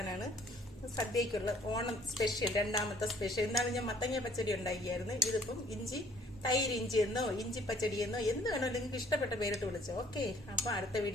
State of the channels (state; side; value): normal; both; correlation 0.59